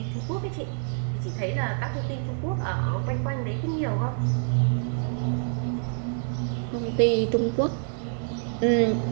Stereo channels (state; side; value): silent; left; 57 dB below the other